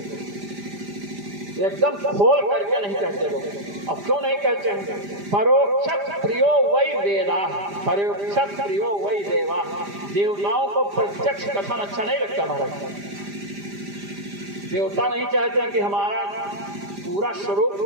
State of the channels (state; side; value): late; left; 5.0 ms